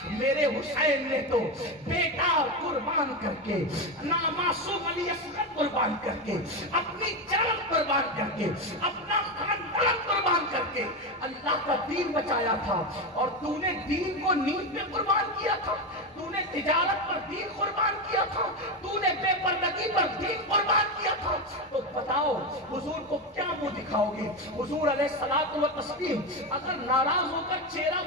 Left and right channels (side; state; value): both; normal; correlation 0.14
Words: میرے حسین نے تو بیٹا قربان کر کے، نامعصوم علی اصغر قربان کر کے، اپنی جان قربان کر کے، اپنا خاندان قربان کر کے اللہ کا دین بچایا تھا، اور تو نے دین کو نیند پہ قربان کیا تھا، تو نے تجارت پر دین قربان کیا تھا، تو نے بے پردگی پر دین قربان کیا تھا. تو بتاؤ حضور کو کیا منہ دکھاؤ گے؟ حضور علیہ الصلوۃ والتسلیم اگر ناراض ہو کر چہرہ